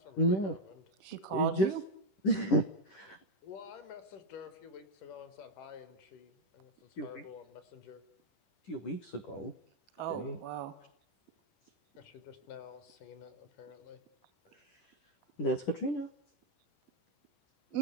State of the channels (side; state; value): right; late; 10 ms